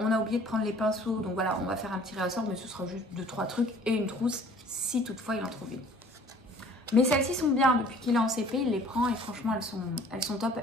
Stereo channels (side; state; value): both; normal; correlation 0.52